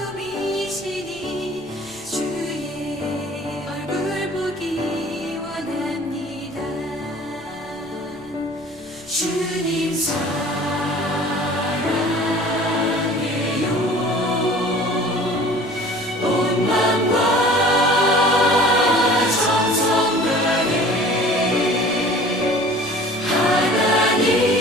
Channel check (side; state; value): left; noise; rumble, 26 dB below the sound